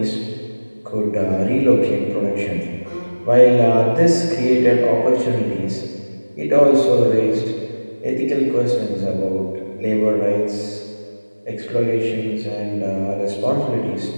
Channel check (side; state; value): both; inverted; correlation -1.00